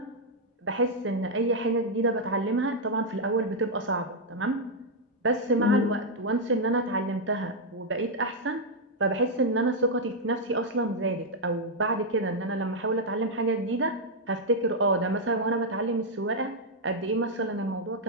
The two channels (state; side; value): normal; both; correlation -0.02